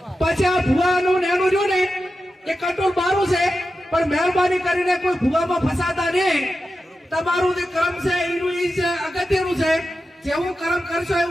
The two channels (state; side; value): normal; both; correlation 0.91